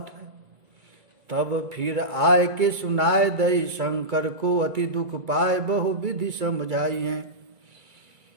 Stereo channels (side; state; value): left; late; 1.9 ms